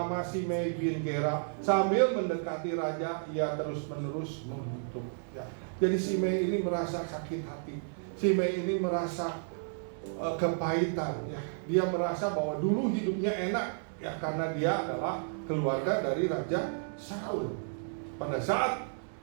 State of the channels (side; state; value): left; silent; digital silence